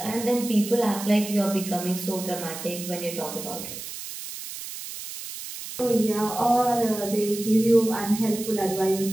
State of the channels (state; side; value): noise; right; hiss, 10 dB below the sound